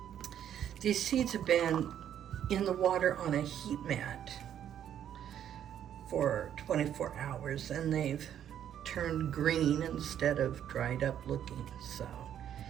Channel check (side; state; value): left; quieter; 10.0 dB